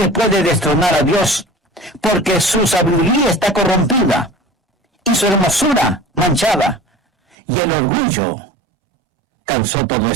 puede destronar a Dios, porque su sabiduría está corrompida y su hermosura manchada, y el orgullo causó todo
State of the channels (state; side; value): drops out; left; at 7.4 s